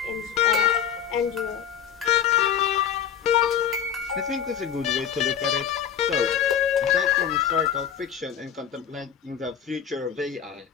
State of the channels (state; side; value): quieter; right; 8.6 dB